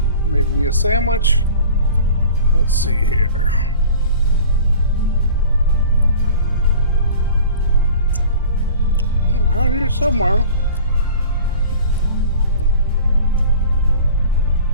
Made me a sandwich. Let's see here. Around here somewhere.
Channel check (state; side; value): inverted; both; correlation -0.43